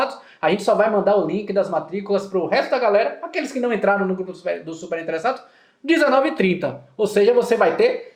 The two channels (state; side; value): identical; both; correlation 1.00